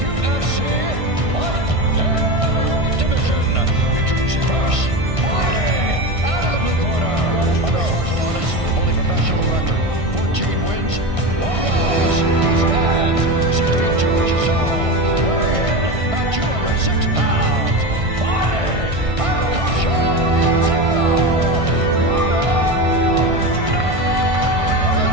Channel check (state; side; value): late; left; 1.6 ms